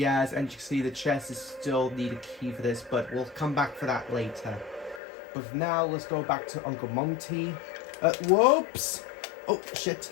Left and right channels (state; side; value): drops out; right; at 5.0 s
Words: and you can see the chest is still need a key for this, but we'll come back for that later. But for now, let's go back to Uncle Monty. Whoops! Oh